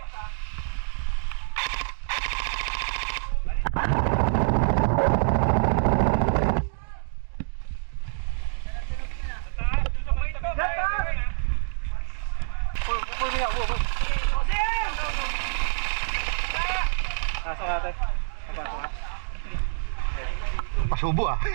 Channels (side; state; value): left; silent; digital silence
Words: Pasok natin. Pasubo ah.